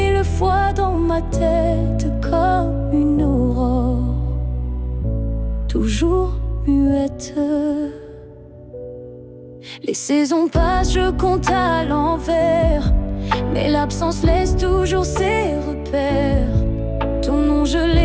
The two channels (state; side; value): identical; both; correlation 1.00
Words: fois dans ma tête comme une aurore, toujours muette. Les saisons passent, je compte à l'envers, mais l'absence laisse toujours ses repères. Ton nom je